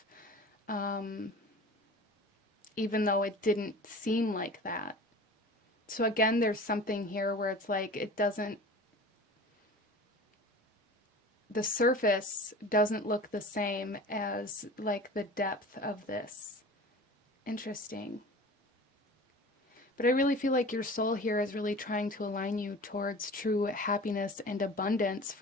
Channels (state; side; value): normal; both; correlation 0.39